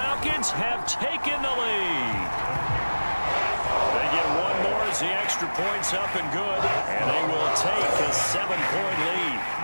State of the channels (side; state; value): both; inverted; correlation -1.00